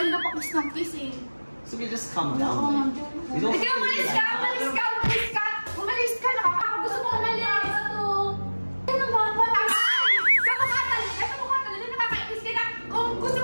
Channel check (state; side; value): inverted; both; correlation -1.00